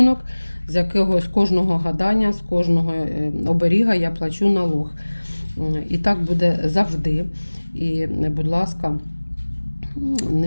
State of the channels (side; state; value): both; inverted; correlation -1.00